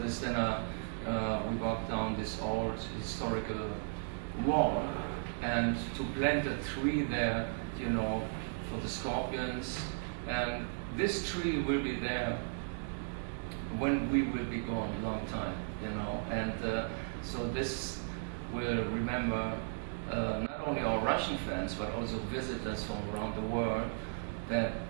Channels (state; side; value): silent; left; digital silence